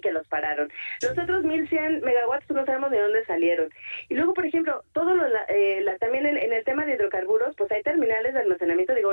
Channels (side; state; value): both; inverted; correlation -1.00